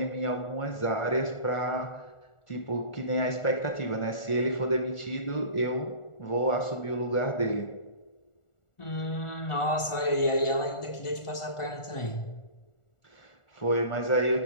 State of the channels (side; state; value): right; late; 1.4 ms